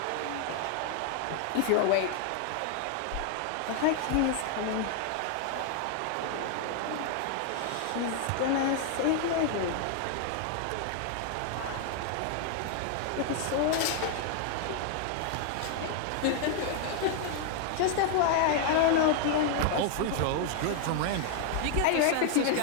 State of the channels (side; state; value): both; different; correlation 0.00